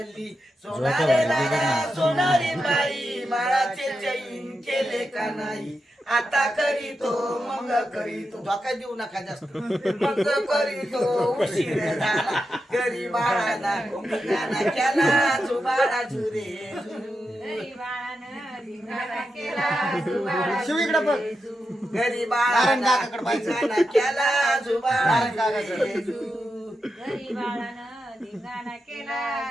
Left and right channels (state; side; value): normal; both; correlation 0.88